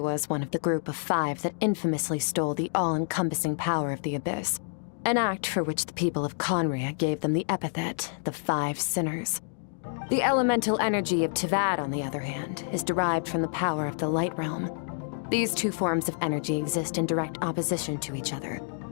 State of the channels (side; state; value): right; silent; digital silence